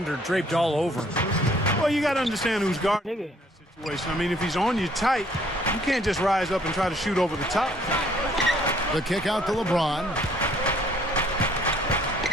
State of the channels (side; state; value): both; normal; correlation 0.62